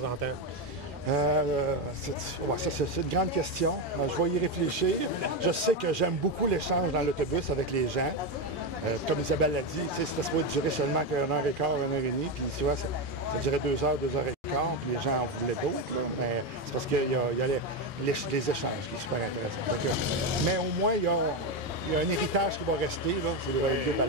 temps? C'est une grande question. Je vais y réfléchir. Je sais que j'aime beaucoup l'échange dans l'autobus avec les gens. Comme Isabelle l'a dit, c'était supposé durer seulement qu'une heure et quart, une heure et demie. Puis tu vois, ça durait 2 heures et quart. Puis les gens en voulaient d'autres. Mais c'est parce qu'il y a les échanges qui sont super intéressants. Mais au moins, il y a un héritage qui va rester. C'est les 2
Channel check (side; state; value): right; late; 3.1 ms